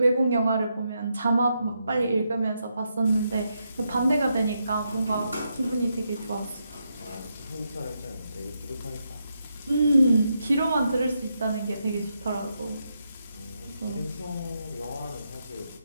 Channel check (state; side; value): inverted; both; correlation -0.82